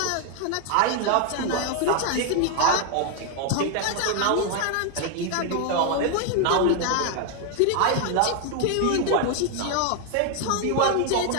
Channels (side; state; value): both; different; correlation 0.01